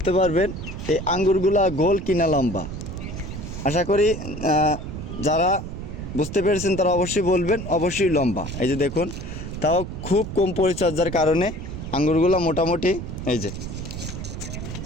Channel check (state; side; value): noise; right; rumble, 8 dB below the sound